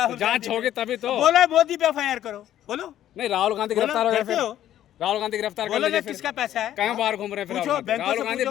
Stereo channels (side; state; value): right; quieter; 12.0 dB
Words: जांच गांधी होगी पे- तभी तो। बोलो मोदी पे एफआईआर करो, बोलो नहीं, राहुल गांधी बोलो, गिरफ्तार हो गए करते फिर। हो? राहुल गांधी गिरफ्तार कर बोलो ना लीजिए फिर। किसका पैसा है? कहाँ बाहर घूम रहे हैं फिर पूछो राहुल गांधी? बैंकों राहुल से गांधी पूछो।